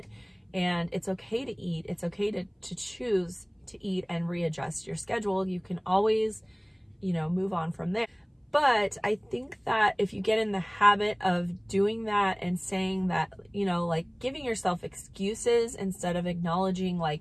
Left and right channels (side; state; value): both; identical; correlation 1.00